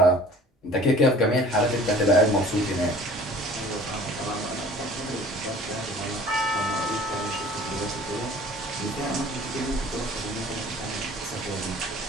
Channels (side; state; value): both; normal; correlation 0.48